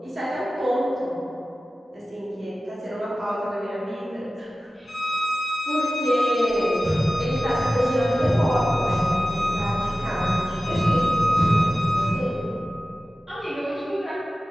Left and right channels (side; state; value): both; normal; correlation 0.96